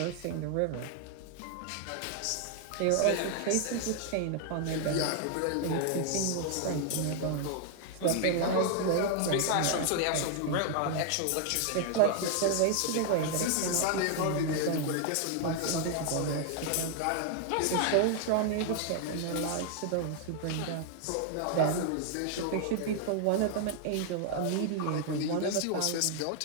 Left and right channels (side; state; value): both; different; correlation 0.00